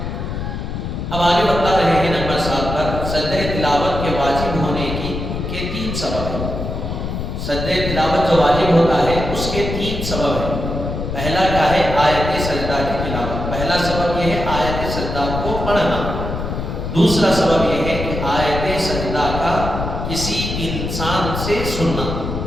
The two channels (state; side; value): noise; left; rumble, 5 dB below the sound